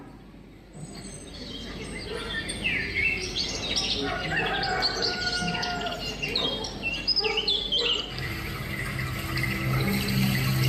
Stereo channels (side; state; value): both; identical; correlation 1.00